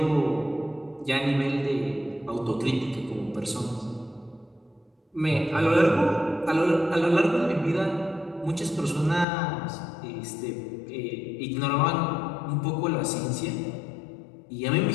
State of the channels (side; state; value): right; drops out; at 9.2 s